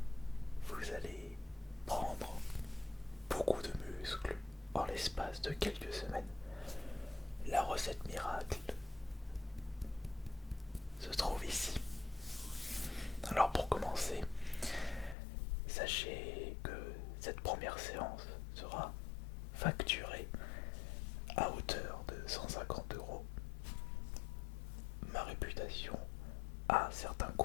vous allez prendre beaucoup de muscles en l'espace de quelques semaines. La recette miracle se trouve ici. Alors pour commencer, sachez que cette première séance sera facturée à hauteur de 150 €. Ma réputation a un certain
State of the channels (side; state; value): right; drops out; at 15.2 s